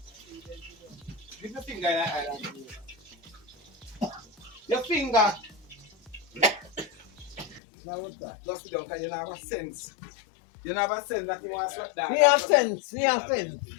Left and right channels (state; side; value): drops out; right; at 7.6 s